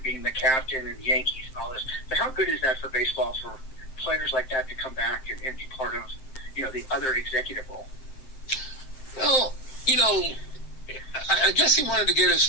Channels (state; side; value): late; right; 7.6 ms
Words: being the captain and the Yankees and all this. But how good is that for baseball, for players like that to come back and be part of the other executive role? Well, I guess he wanted to get his